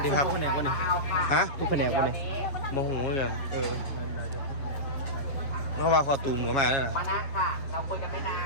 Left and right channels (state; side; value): late; right; 7.5 ms